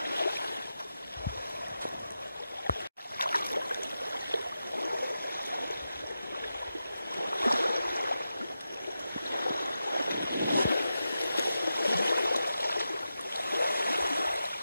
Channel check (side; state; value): both; inverted; correlation -0.90